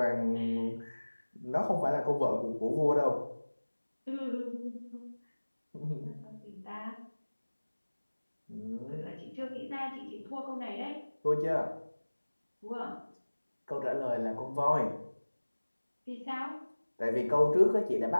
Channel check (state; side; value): inverted; both; correlation -1.00